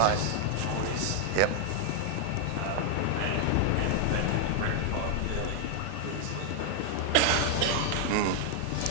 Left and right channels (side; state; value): both; different; correlation 0.00